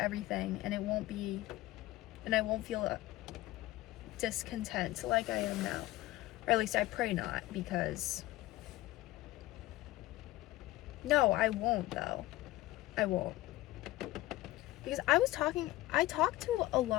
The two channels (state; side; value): quieter; right; 17.3 dB